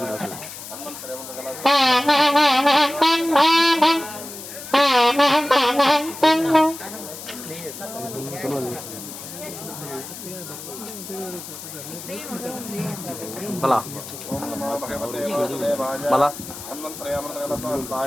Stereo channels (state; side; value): noise; left; hiss, 12 dB below the sound